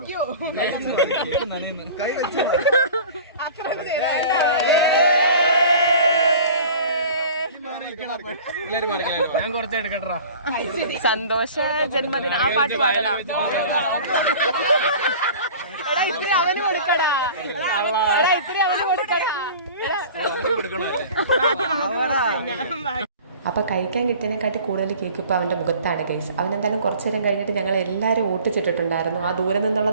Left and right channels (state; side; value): inverted; both; correlation -0.42